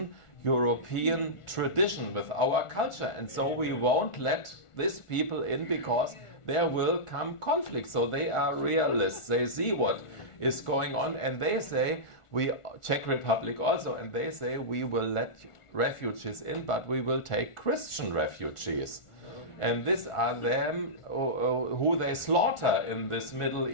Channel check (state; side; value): late; right; 1.4 ms